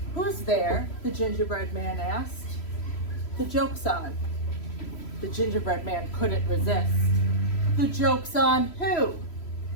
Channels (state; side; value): late; right; 3.0 ms